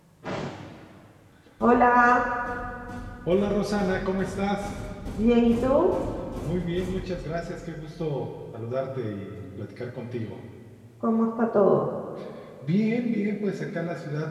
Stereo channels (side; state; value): both; identical; correlation 1.00